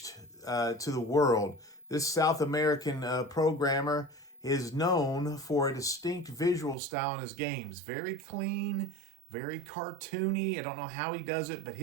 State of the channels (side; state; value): left; drops out; at 6.8 s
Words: to the world? This South American programmer is known for a distinct visual style in his games. Very clean, very cartoony. I don't know how he does it, but